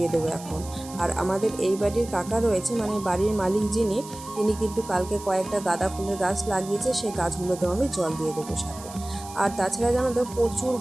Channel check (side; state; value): right; noise; hiss, 16 dB below the sound